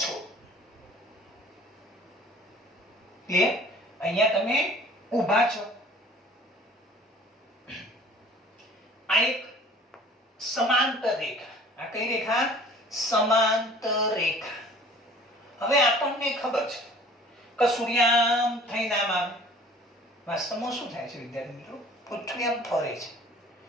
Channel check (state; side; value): normal; both; correlation 0.49